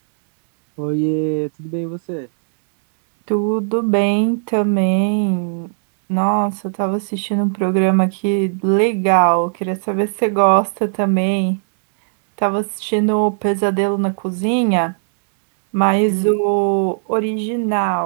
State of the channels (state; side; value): silent; left; digital silence